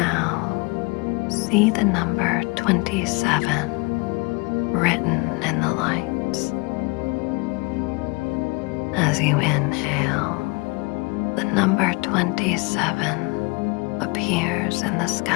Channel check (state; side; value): quieter; right; 28.0 dB